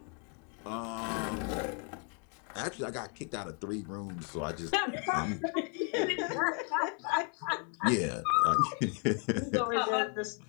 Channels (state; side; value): quieter; right; 39.3 dB